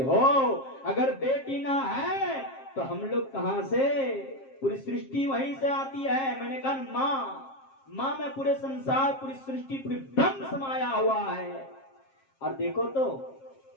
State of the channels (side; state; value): right; late; 7.5 ms